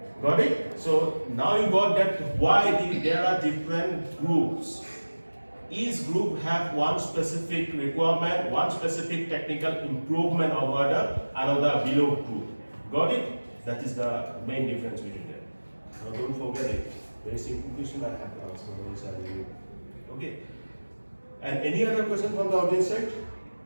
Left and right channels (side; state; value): both; inverted; correlation -1.00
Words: Got it? So now you got that why there are different groups. Each group have one specific requirement, one specific technical improvement over the another below group. Got it? That is the main difference between them. Now don't forget it. Very simple question I have to answer. Okay. And any other question from the audience side?